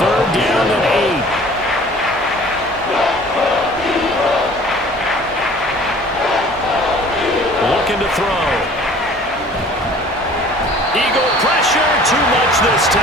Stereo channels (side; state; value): both; normal; correlation 0.49